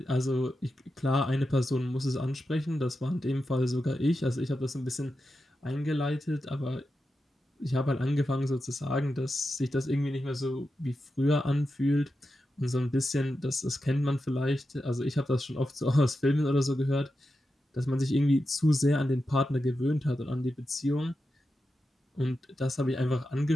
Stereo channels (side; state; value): both; normal; correlation 0.89